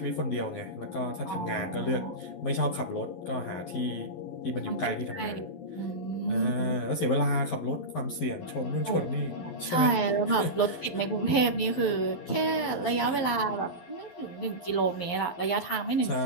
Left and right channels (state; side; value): late; right; 11 ms